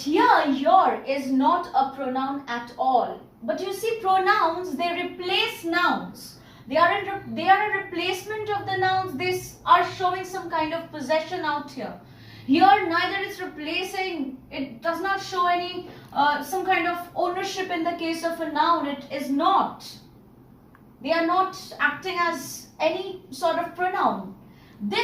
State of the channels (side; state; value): both; identical; correlation 1.00